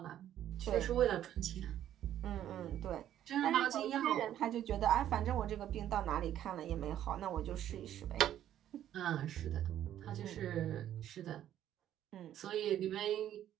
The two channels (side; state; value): left; quieter; 11.4 dB